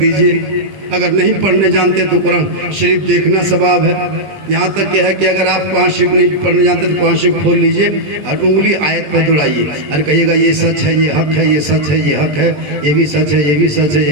अगर नहीं पढ़ने जानते तो कुरान शरीफ देखना सवाब है। यहाँ तक क्या है कि अगर आप कुरान शरीफ नहीं पढ़ने जानते तो कुरान शरीफ खोल लीजिए और उंगली आयत पर दुलाइए और कहिएगा ये सच है, ये हक है, ये सच है, ये हक है, ये भी सच है, ये भी सच है,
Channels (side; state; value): left; late; 20 ms